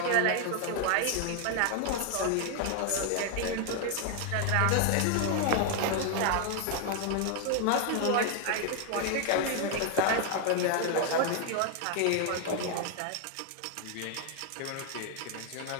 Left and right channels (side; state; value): both; different; correlation 0.00